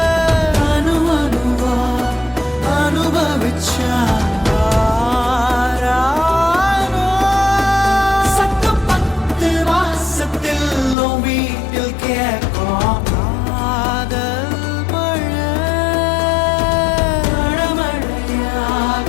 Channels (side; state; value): right; drops out; at 11.0 s